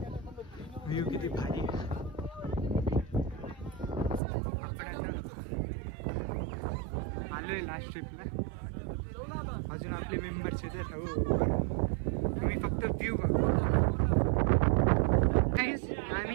व्ह्यू किती भारी. आपण आता आलोय लास्ट ट्रिपला. अजून आपले मेंबर्स येतात. आम्ही फक्त व्ह्यू बघू.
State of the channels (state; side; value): drops out; left; at 4.2 s